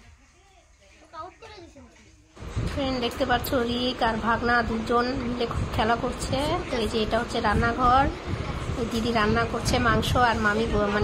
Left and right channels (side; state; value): both; identical; correlation 1.00